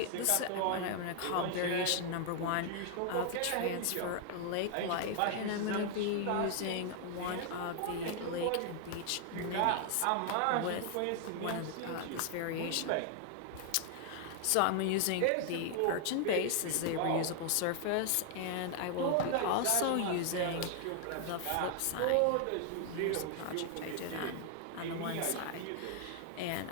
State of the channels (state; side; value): different; both; correlation 0.00